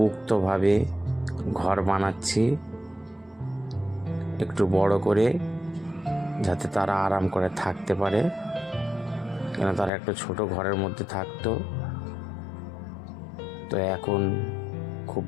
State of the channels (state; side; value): drops out; right; at 9.9 s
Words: ঘর বানাচ্ছি, একটু বড় করে, যাতে তারা আরাম করে থাকতে পারে। কেন তারা একটা ছোট ঘরের মধ্যে থাকতো, তো এখন খুব